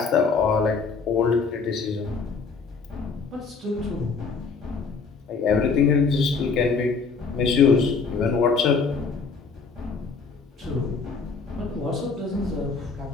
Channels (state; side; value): quieter; right; 4.8 dB